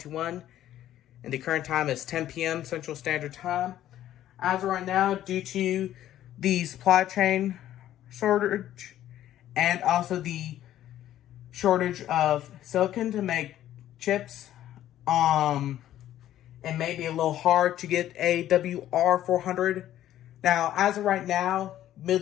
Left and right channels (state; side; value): quieter; right; 12.4 dB